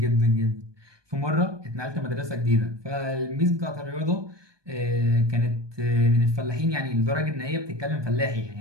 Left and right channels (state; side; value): late; left; 1.2 ms